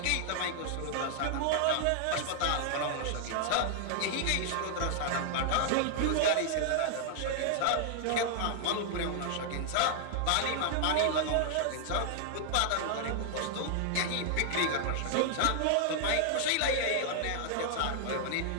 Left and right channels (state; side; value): different; both; correlation 0.00